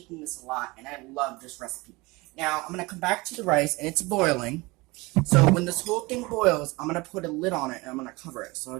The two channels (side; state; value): left; quieter; 23.6 dB